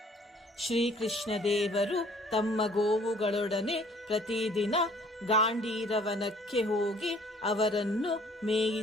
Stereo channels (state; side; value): normal; both; correlation 0.56